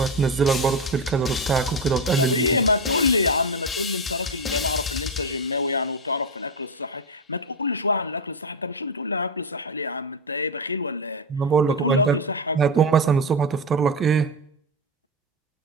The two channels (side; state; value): both; normal; correlation 0.11